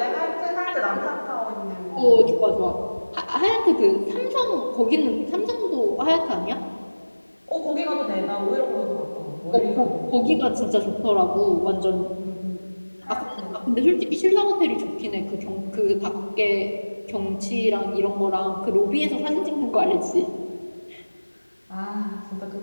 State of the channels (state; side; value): inverted; both; correlation -1.00